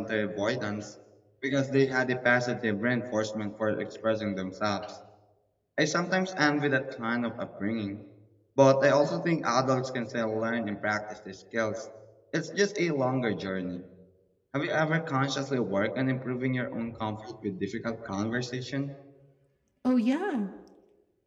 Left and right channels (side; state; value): both; identical; correlation 1.00